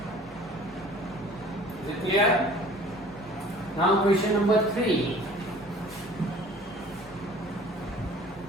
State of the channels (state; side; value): normal; both; correlation 0.49